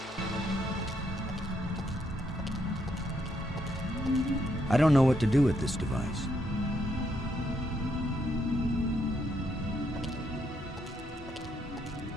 I don't know what to do with this device.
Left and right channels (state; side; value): normal; both; correlation 0.76